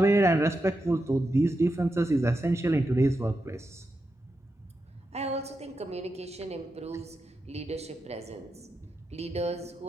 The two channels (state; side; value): normal; both; correlation 0.87